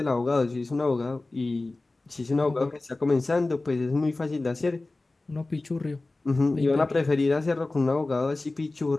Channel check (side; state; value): right; quieter; 3.1 dB